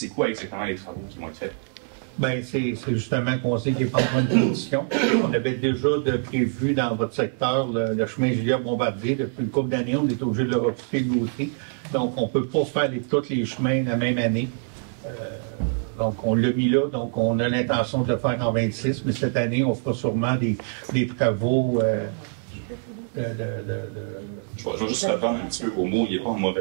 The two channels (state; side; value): silent; left; 62 dB below the other